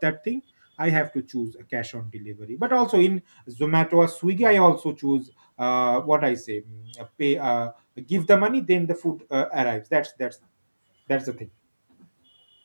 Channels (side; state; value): both; inverted; correlation -1.00